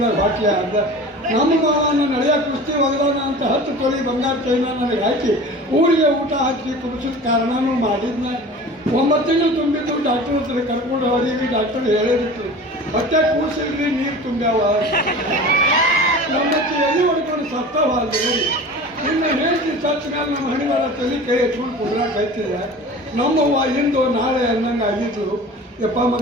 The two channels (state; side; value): normal; both; correlation 0.38